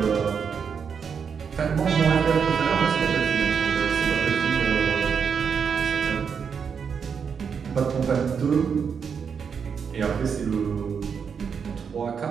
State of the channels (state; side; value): quieter; left; 6.6 dB